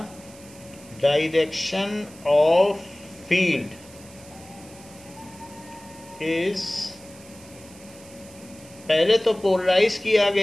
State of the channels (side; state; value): right; noise; hiss, 21 dB below the sound